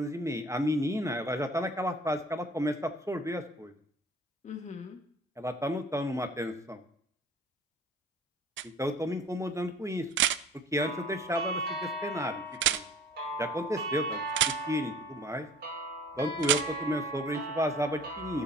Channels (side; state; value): both; normal; correlation 0.47